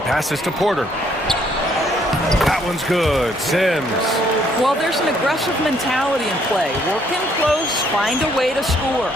passes to Porter. That one's good. Sims. Well, there's an aggressive mentality in play. Work in close, find a way to score.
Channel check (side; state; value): both; normal; correlation 0.67